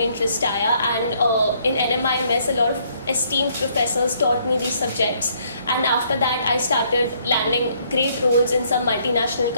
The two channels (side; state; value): both; inverted; correlation -0.67